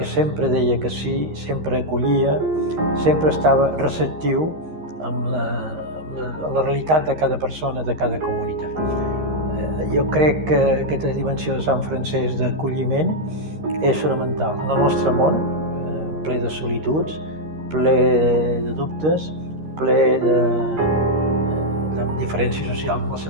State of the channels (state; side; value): late; left; 13 ms